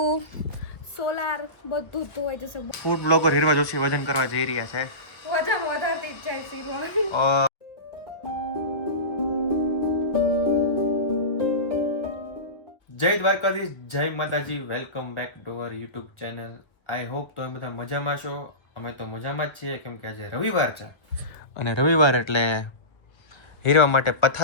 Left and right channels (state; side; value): late; right; 1.1 ms